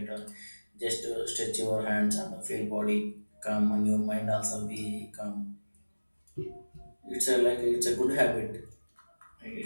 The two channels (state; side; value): inverted; both; correlation -1.00